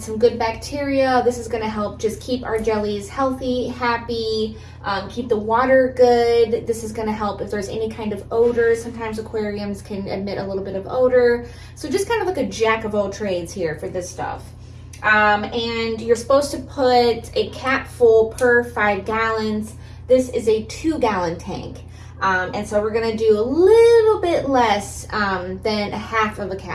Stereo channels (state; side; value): identical; both; correlation 1.00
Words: some good bacteria. This is gonna help just keep our jellies healthy, happy, keep the water good. This is gonna help if there's any kind of odor. Sometimes aquariums can emit a little bit of odor. So just kind of like a jack of all trades here for this stuff. And you're supposed to put a cap full per 5 gallons. This is a 2-gallon tank. And so we're gonna do a little bit less than a half of a